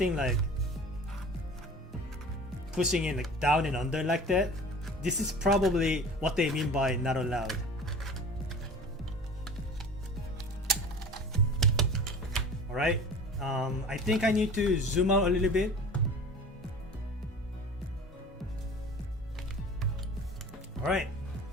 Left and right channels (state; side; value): normal; both; correlation 0.41